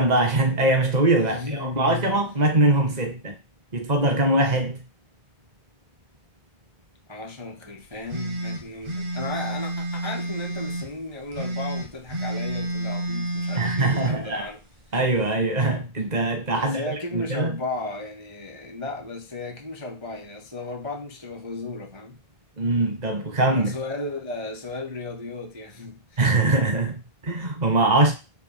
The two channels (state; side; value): late; left; 2.0 ms